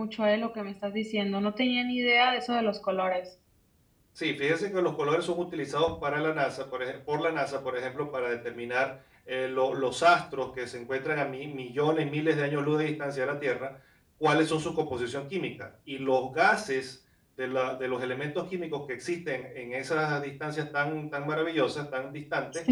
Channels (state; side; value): identical; both; correlation 1.00